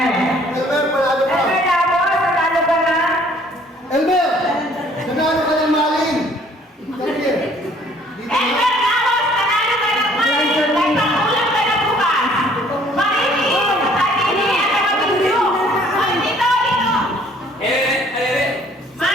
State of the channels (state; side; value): normal; both; correlation 0.58